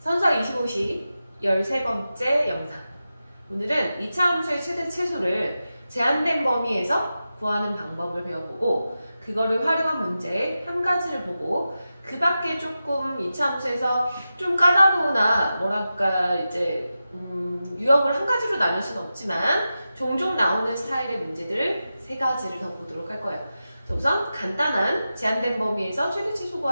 선서 25시 13번째 영상. 오늘은 2차 함수의 최대 최소를 제한된 범위에서 구하는 방법을 배워보고 그거를 활용한 문제 한 가지를 보고 그 밖에 조금 2차 함수에서 좀 까다로우나 뭐랄까 이제 유형을 한 가지로 나눌 수는 없지만 종종 나오는 스타일의 문제들을 세 가지를 더 보도록 할 거예요. 우선 간단한 제한된 범위에서 최대 최소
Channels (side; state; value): both; inverted; correlation -0.92